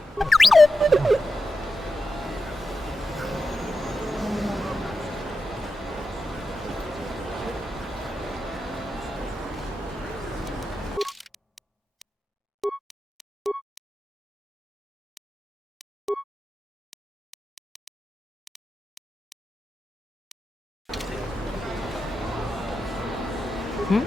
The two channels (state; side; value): normal; both; correlation 0.89